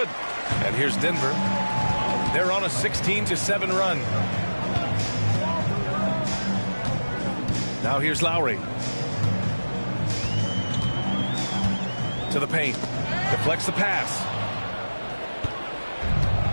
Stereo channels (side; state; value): both; inverted; correlation -1.00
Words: And here's Denver. They're on a 16-7 run. Now here's Lowry. To the paint. Deflects the pass.